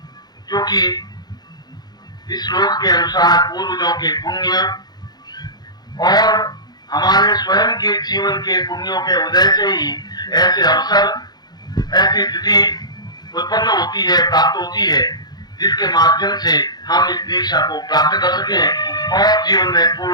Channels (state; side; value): late; right; 0.20 ms